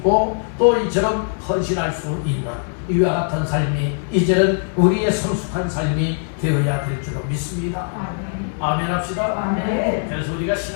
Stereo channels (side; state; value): right; silent; 65 dB below the other